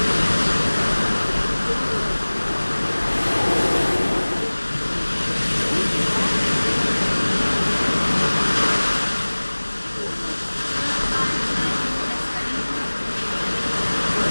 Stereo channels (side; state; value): both; inverted; correlation -1.00